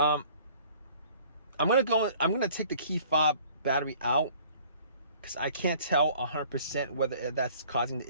gonna take the key fob battery out, because I can't tell 100% whether that's causing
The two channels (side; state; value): both; inverted; correlation -0.53